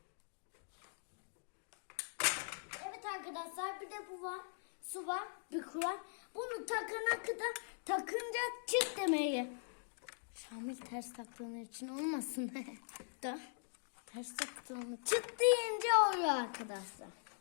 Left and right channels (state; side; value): silent; right; digital silence